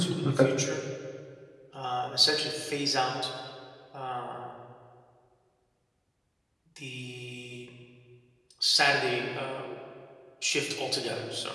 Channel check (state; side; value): identical; both; correlation 1.00